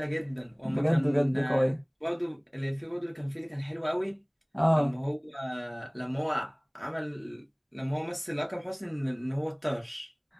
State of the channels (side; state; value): both; identical; correlation 1.00